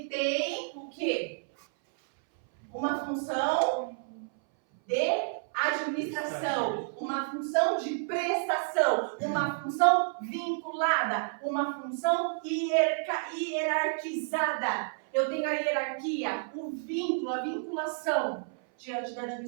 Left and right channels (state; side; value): silent; left; 58 dB below the other